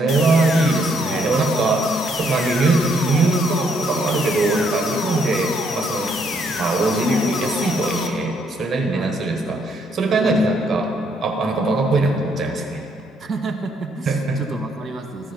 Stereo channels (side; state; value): both; normal; correlation 0.71